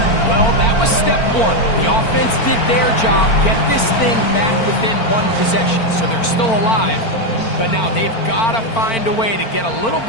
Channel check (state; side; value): late; right; 4.4 ms